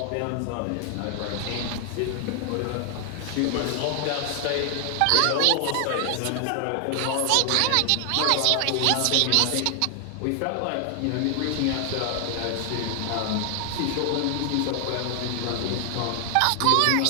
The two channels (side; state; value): both; different; correlation 0.00